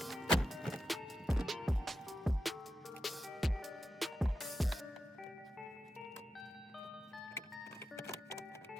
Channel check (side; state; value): both; normal; correlation 0.89